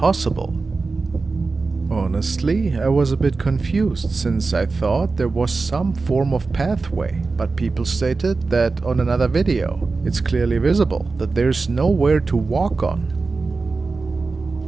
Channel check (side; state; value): left; quieter; 4.0 dB